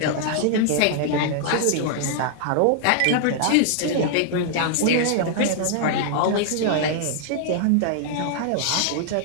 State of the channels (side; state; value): both; different; correlation 0.00